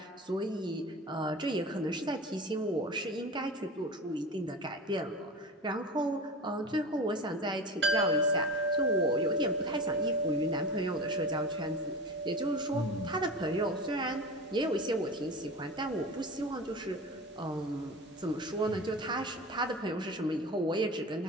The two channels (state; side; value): normal; both; correlation 0.31